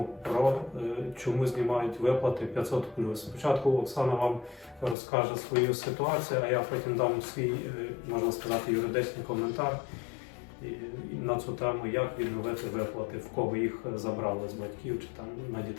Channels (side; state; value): right; drops out; at 5.0 s